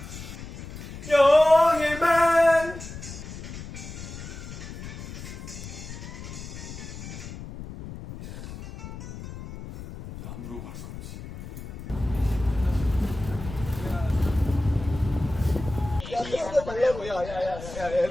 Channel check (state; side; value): noise; left; rumble, 11 dB below the sound